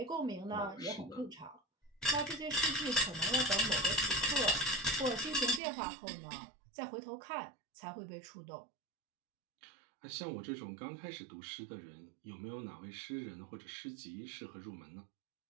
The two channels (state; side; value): drops out; left; at 5.6 s